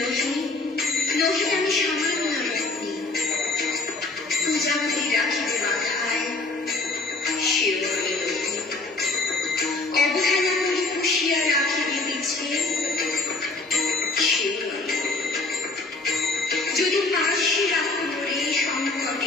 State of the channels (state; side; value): quieter; right; 3.3 dB